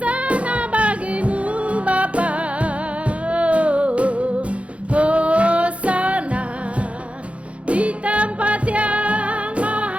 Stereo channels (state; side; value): late; left; 0.063 ms